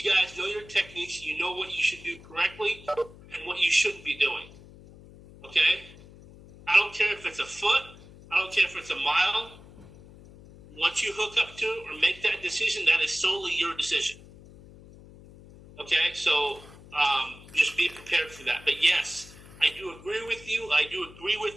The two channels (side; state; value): left; noise; hum, 20 dB below the sound